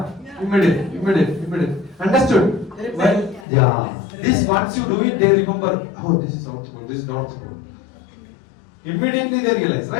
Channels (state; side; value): drops out; right; at 3.5 s